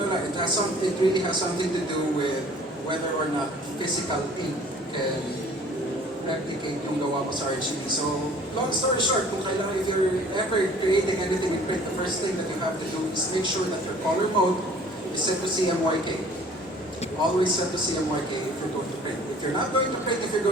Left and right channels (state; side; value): normal; both; correlation 0.52